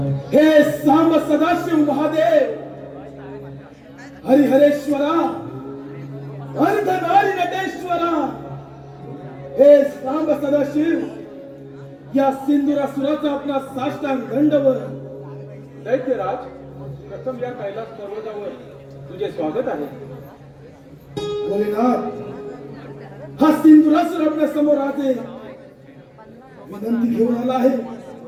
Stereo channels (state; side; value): identical; both; correlation 1.00